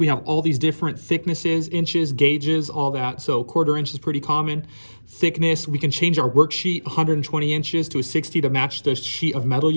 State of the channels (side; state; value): both; inverted; correlation -1.00